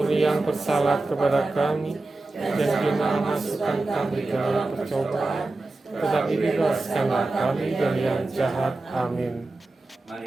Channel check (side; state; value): left; quieter; 3.1 dB